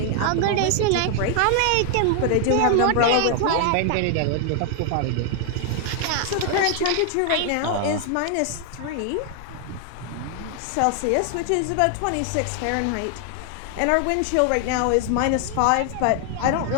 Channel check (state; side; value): different; both; correlation 0.00